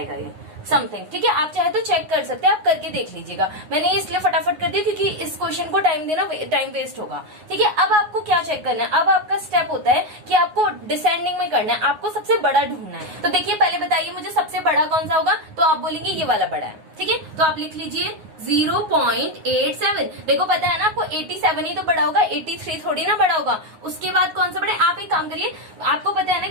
ये समथिंग। ठीक है, आप चाहे तो चेक कर सकते हैं, आप करके देख लीजिएगा। मैंने इसलिए फटाफट कर दिया क्योंकि इस क्वेश्चन को टाइम वेस्ट होगा। ठीक है, अब आपको क्या चेक करना है, अब आपका स्टेप होता है कि आपको डिसेंडिंग में करना है, आपको सबसे बड़ा ढूंढना है। तो देखिए पहले बताइए मुझे सबसे बड़ा कौन सा होगा, तो आप बोलेंगे ये वाला बड़ा है। ठीक है, तो आप लिख लीजिए 0.87। देखो पता है ना आपको 87 ही तो बड़ा होगा, 83 थोड़ी ना बड़ा होगा। उसके बाद कौन सा बड़ा है, आप एक काम करिए, आपको पता है ना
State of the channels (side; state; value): left; late; 9.6 ms